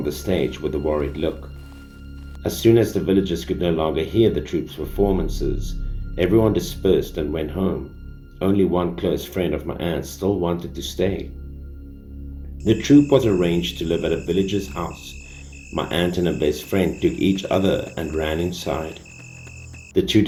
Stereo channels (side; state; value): both; identical; correlation 1.00